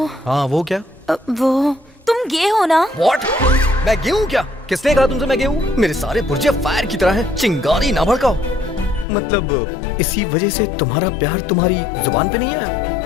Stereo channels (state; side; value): drops out; right; at 9.1 s